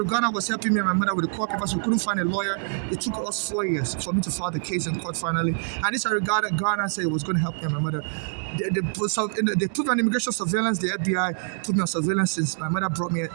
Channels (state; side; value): silent; left; digital silence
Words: Ghana was helping me and my mother with the court papers. We couldn't find a lawyer. It took us 4 years for me to file the case in court finally. And this I regarded Ghana said it was going to help me and my mother. They put me on immigration surveillance. The FBI put me on surveillance since my mother brought me.